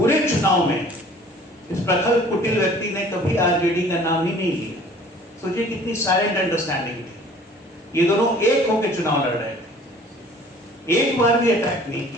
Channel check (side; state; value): both; normal; correlation 0.51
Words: चुनाव में इस प्रखर कुटिल व्यक्ति ने कभी आरजेडी का नाम ही नहीं लिया। सोचिए कितनी साइलेंट अंडरस्टैंडिंग थी। ये दोनों एक होकर चुनाव लड़ रहे थे, एक बार भी अटैक नहीं